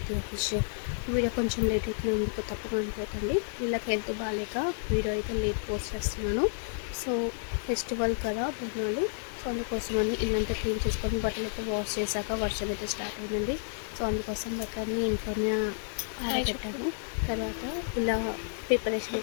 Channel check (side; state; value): right; silent; digital silence